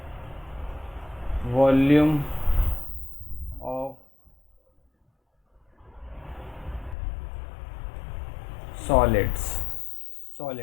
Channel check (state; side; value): drops out; right; at 7.0 s